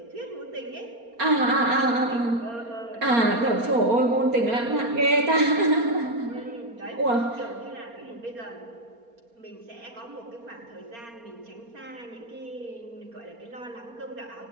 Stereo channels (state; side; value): late; left; 4.3 ms